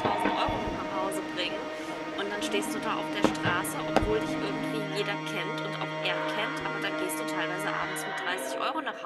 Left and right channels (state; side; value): identical; both; correlation 1.00